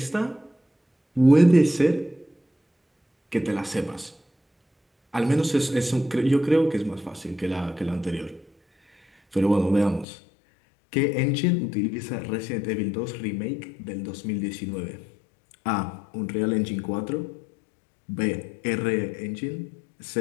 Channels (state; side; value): drops out; right; at 10.1 s